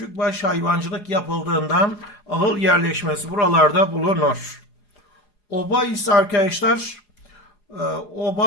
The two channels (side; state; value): right; late; 4.8 ms